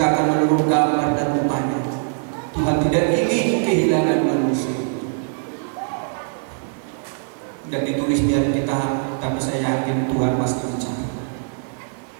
menurut gambar dan rupanya, Tuhan tidak ingin kehilangan manusia. Dan ditulis di Alkitab, tapi saya yakin Tuhan pasti bicara.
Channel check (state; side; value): silent; left; digital silence